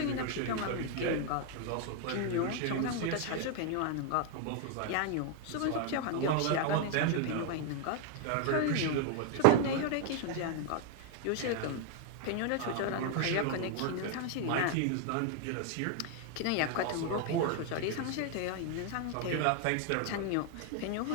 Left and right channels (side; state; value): both; different; correlation 0.01